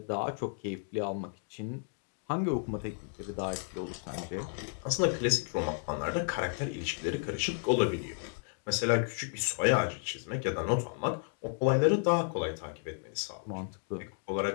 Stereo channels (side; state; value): right; silent; 56 dB below the other